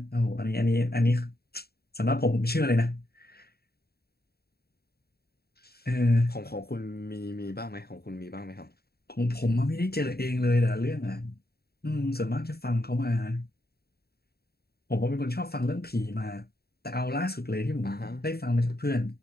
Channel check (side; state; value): right; late; 0.46 ms